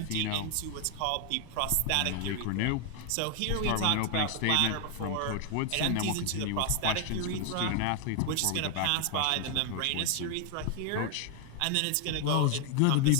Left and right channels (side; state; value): both; different; correlation 0.00